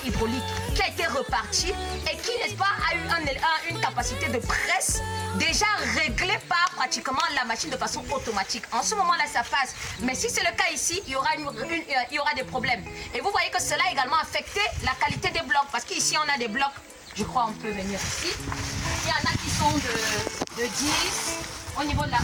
hydraulique qui a été reparti et qui, n'est-ce pas, a eu une capacité de presse déjà réglée par pratiquement la machine de façon automatique. En ce moment-là, ça passe. Mais si c'est le cas ici, il y aura des problèmes. Et vous voyez que cela a également affecté la qualité des blocs. Parce qu'ici, on a des blocs, je crois on peut venir ici. Il y en a qui sont de 10 au niveau de la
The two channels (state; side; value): identical; both; correlation 1.00